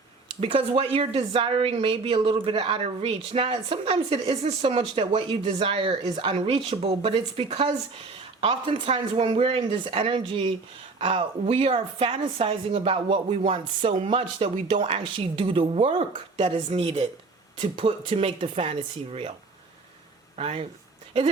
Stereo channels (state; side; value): quieter; left; 3.9 dB